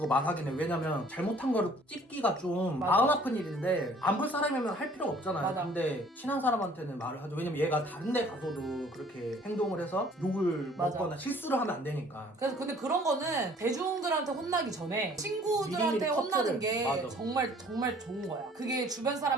말하긴 해. 왜냐면 잘못한 거를 찝기가 좀 맞아. 마음 아픈 일인데 안 볼 사람이면 할 필요가 없잖아요. 맞아. 근데 친한 사람한테는 말을 하죠. 왜냐면 얘가 다른 데 가서도 그렇게 행동을 해서 욕을 맞아. 먹거나 실수를 하면 안 되니까. 그래서 근데 그런 거는 대중들한테 혼나기 전에 친구들한테 미리미리 혼나는 커트를. 게 맞아. 정말 좋은 거야. 그게 주변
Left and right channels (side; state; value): both; normal; correlation 0.55